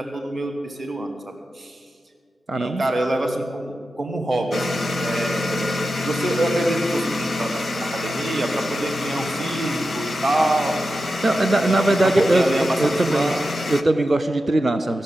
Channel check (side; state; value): both; normal; correlation 0.91